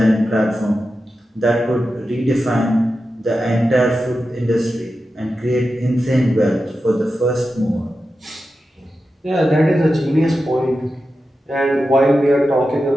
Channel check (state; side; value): normal; both; correlation 0.91